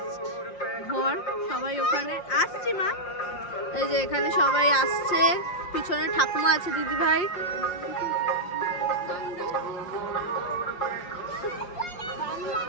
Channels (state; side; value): late; right; 5.6 ms